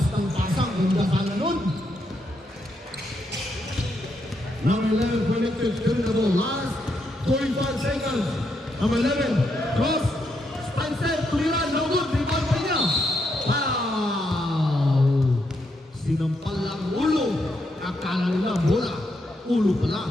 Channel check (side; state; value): both; normal; correlation 0.79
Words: ng pasang, ganda sana nun. Number 11 connected, turn the ball. Last 45 seconds. Number 11, cross, stand set, tuliran, no good. Rebound pa niya. Wow! Sinampal lang ulo. Akala nila bola. Ulo